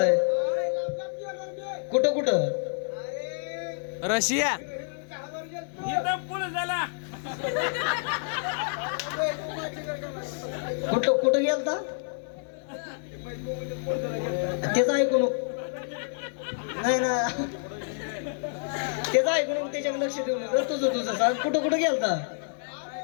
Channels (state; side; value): silent; right; digital silence